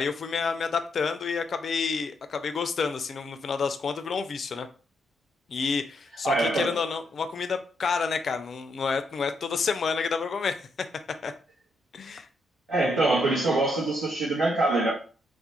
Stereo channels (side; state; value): both; normal; correlation 0.77